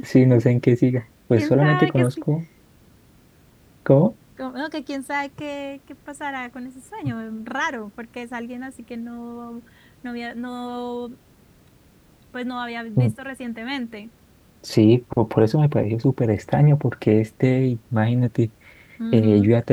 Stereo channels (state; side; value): identical; both; correlation 1.00